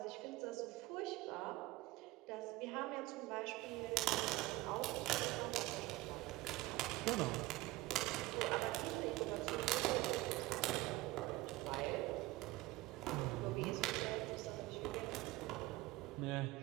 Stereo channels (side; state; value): left; quieter; 19.5 dB